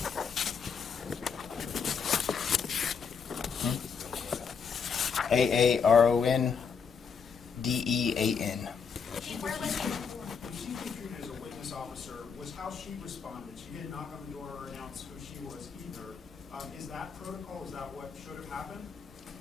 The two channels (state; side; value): quieter; right; 6.1 dB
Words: AARONDEAN. Chief, where was he before? She's being treated as a witness officer. Was how she responded. She didn't knock on the door or announce who she was either. Is that protocol? Is that what should have happened?